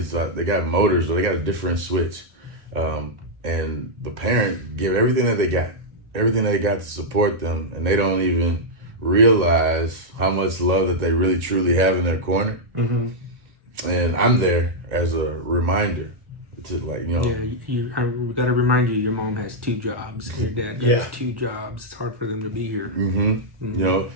they got motors, but they got a different switch, and the parent give everything that they got. Everything they got to support them, and they don't even realize how much love that they really truly have in their corner. And I'm there as a reminder to Yeah, we got to remind you, your mom has 2 jobs. Your dad has 2 jobs. It's hard for them to be here. And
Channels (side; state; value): left; late; 1.8 ms